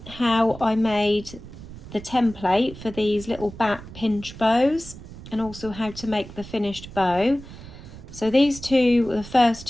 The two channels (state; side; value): noise; right; rumble, 15 dB below the sound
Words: how I made the template for these little bat pinch bows and also how to make the finished bow. So these two were the first